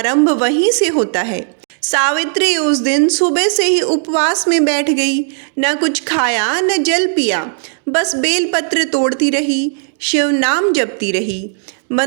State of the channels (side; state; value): left; silent; digital silence